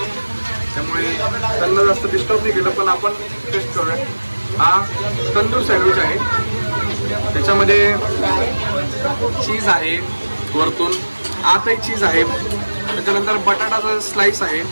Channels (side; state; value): both; inverted; correlation -1.00